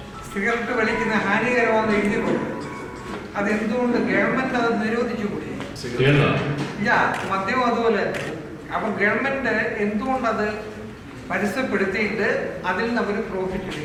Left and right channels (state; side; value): identical; both; correlation 1.00